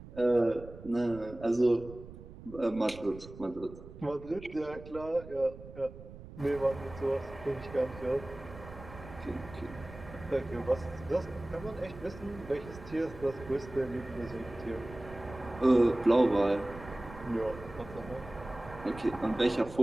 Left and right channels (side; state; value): right; noise; rumble, 15 dB below the sound